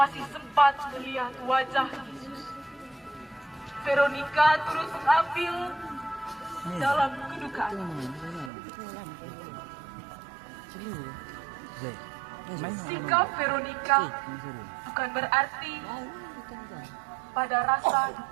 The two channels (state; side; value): drops out; left; at 8.5 s